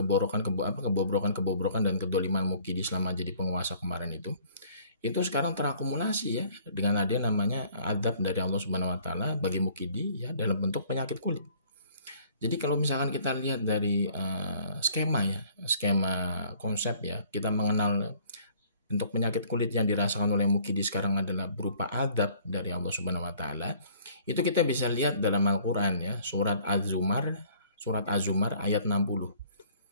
dan kedoliman Mukidi selama jadi penguasa kemarin itu sekarang terakumulasi ya dengan ada namanya adab dari Allah Subhanahu Wa Taala bagi Mukidi ya dalam bentuk penyakit kulit. Jadi kalau misalkan kita lihat dari skema konsep ya, kita mengenal bentuk penyakit kulit yang dirasakan oleh Mukidi sekarang adalah berupa adab dari Allah Subhanahu Wa Taala. Itu kita bisa lihat dalam Al-Quran ya, surat Az-Zumar ayat 60.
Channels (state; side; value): inverted; both; correlation -0.57